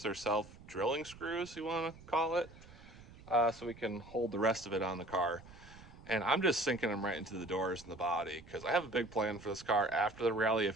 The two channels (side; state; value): right; noise; rumble, 19 dB below the sound